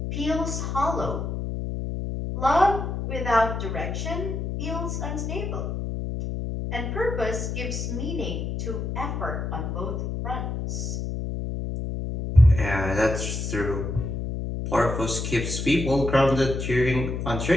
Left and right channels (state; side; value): noise; left; hum, 3 dB below the sound